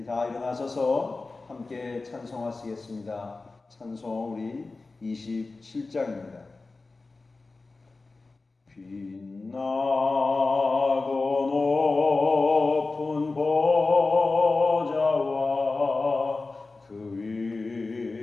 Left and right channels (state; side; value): quieter; right; 3.6 dB